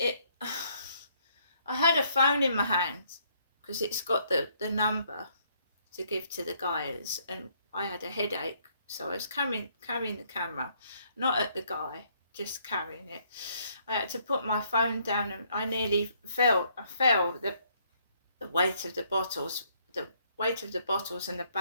I had a phone in my hand, because it's got the number to give to the guys, and I had a headache, so I was carrying the camera, not at the guy, just carrying it. I had to put my phone down, and I nearly fell. I fell. The weight of the bottles and the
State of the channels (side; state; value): both; inverted; correlation -0.68